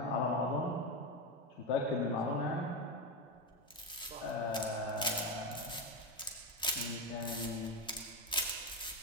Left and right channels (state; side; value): normal; both; correlation 0.13